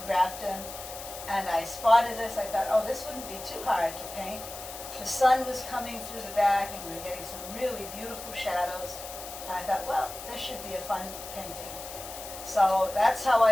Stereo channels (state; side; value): noise; left; hiss, 11 dB below the sound